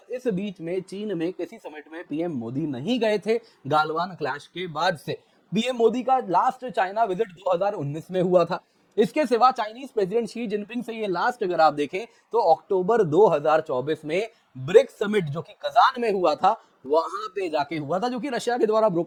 इस बीच में चीन में किसी समिट में पीएम मोदी नहीं गए थे गालवान क्लैश के बाद से। पीएम मोदी का लास्ट चाइना विजिट 2019 में हुआ था। इसके सिवा चाइनीज प्रेसिडेंट शी जिनपिंग से ये लास्ट अगर आप देखें तो अक्टूबर 2024 में ब्रिक्स समिट जो कि कजान में हुआ था, वहां पे जाके हुआ था, जो कि रशिया के द्वारा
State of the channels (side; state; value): both; identical; correlation 1.00